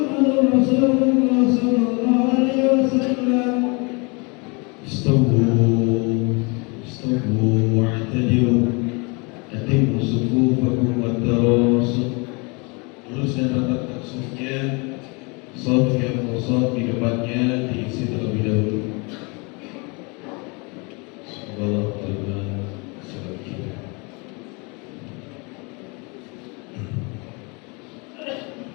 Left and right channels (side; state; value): right; quieter; 30.3 dB